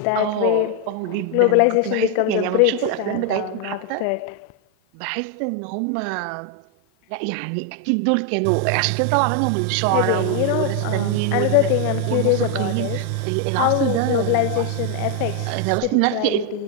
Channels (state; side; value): different; both; correlation 0.01